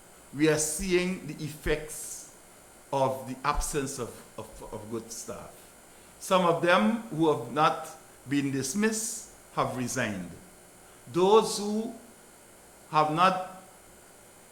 we are seeing the effects of the absence of good staff. Some of them who have not been dismissed have resigned. Those who have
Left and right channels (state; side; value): identical; both; correlation 1.00